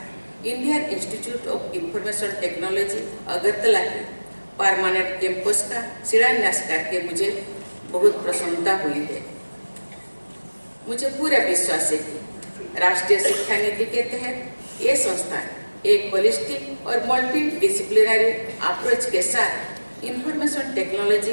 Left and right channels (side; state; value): both; inverted; correlation -1.00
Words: Indian institute of information technology Agartala के परमानेंट कैंपस का शिलान्यास करके मुझे बहुत प्रसन्नता हुई है। मुझे पूरा विश्वास है कि राष्ट्रीय शिक्षा नीति के तहत ये संस्थान एक होलिस्टिक और मल्टी डिसिप्लिनरी अप्रोच के साथ इंफॉर्मेशन